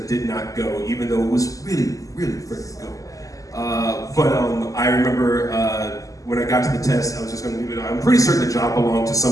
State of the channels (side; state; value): right; late; 0.17 ms